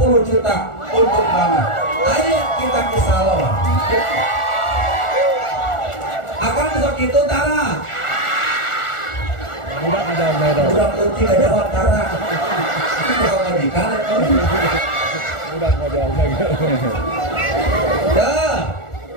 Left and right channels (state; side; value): late; right; 1.4 ms